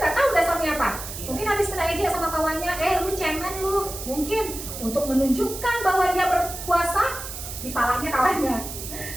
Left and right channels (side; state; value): right; noise; hiss, 9 dB below the sound